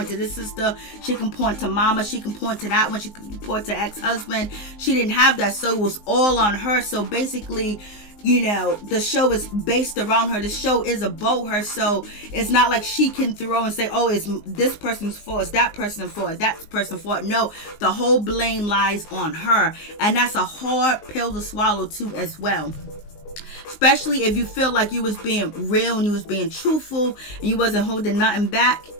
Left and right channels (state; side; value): late; right; 19 ms